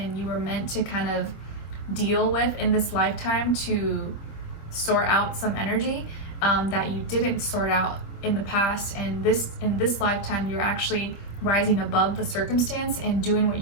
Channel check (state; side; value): late; right; 25 ms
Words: you were meant to kind of deal with in this lifetime to sort out some energy that you didn't sort out in the past. And in this lifetime, you're actually rising above the circumstance and doing what